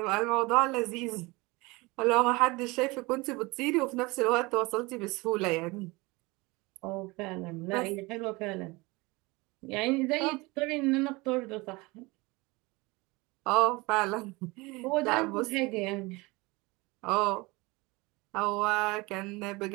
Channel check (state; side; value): quieter; left; 24.0 dB